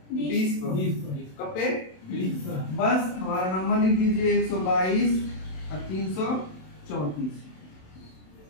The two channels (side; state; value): right; late; 27 ms